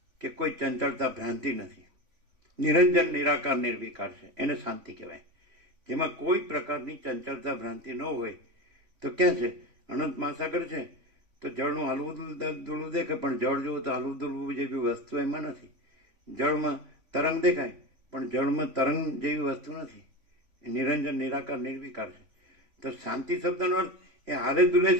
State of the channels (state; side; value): late; left; 3.5 ms